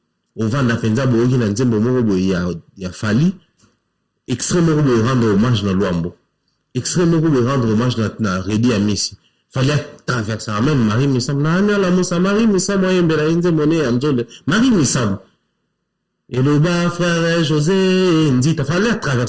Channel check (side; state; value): both; identical; correlation 1.00